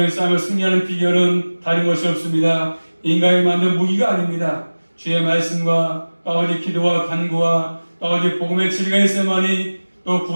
싸움을 승리하는 비결은 다른 것이 없습니다. 인간이 만든 무기가 아닙니다. 주의 말씀과 아버지 기도와 간구와 아버지 복음의 진리가 있어야만이 또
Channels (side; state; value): both; inverted; correlation -1.00